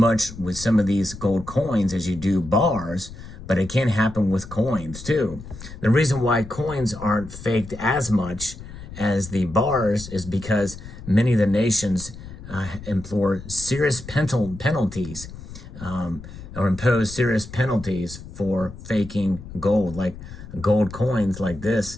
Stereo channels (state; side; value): noise; left; rumble, 14 dB below the sound